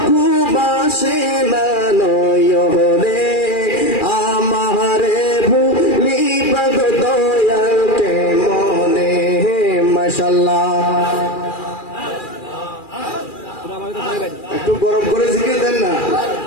ঘুমাসে না নয়নে আমারে ভুলিবা গো দয়াল কেমনে মাশাআল্লাহ একটু গরম করে জিকির দেন না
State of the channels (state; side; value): late; right; 2.4 ms